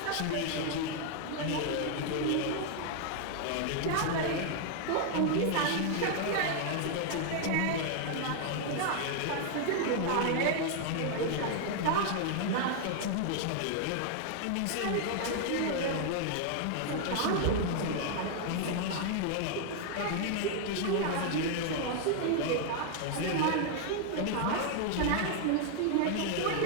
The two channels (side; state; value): both; different; correlation 0.00